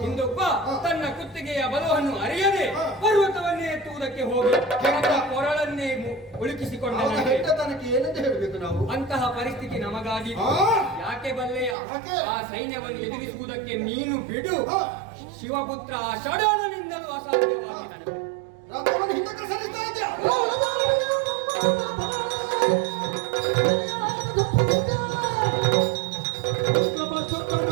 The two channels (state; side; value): drops out; left; at 11.8 s